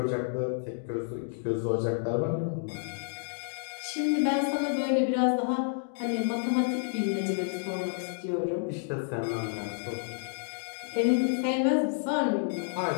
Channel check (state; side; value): silent; right; digital silence